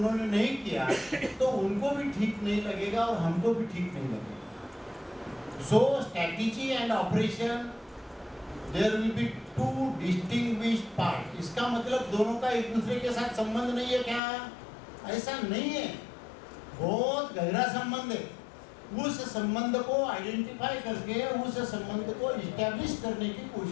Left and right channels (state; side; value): drops out; right; at 14.2 s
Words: नहीं किया, तो उनको भी ठीक नहीं लगेगा और हमको भी ठीक नहीं लगेगा। So strategy and operation, there will be two distinguished part. इसका मतलब दोनों का एक दूसरे के साथ संबंध नहीं है क्या? ऐसा नहीं है, बहुत गहरा संबंध है। उस संबंध को आइडेंटिफाई करके उस संबंध को इस्टेब्लिश करने की